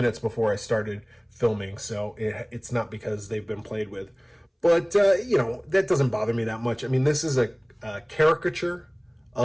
before I started filming, so it's not because they've been played with. But, you know, that doesn't bother me that much. I mean, this is a caricature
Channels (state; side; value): identical; both; correlation 1.00